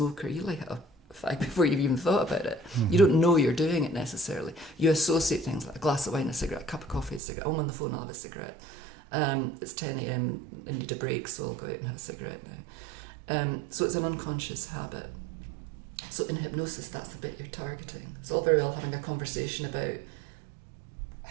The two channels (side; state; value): left; drops out; at 7.2 s